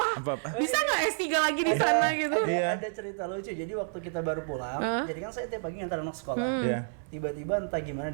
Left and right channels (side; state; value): left; silent; digital silence